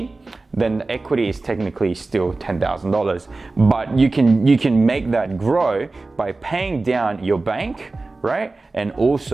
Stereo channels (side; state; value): left; quieter; 3.4 dB